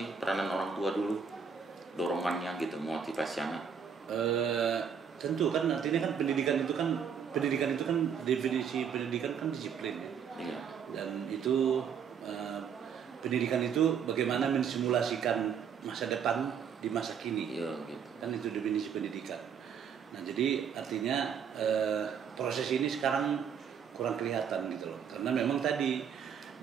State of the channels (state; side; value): quieter; left; 7.2 dB